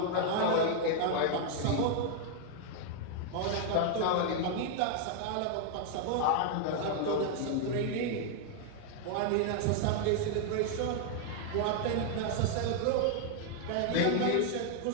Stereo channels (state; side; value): different; both; correlation 0.00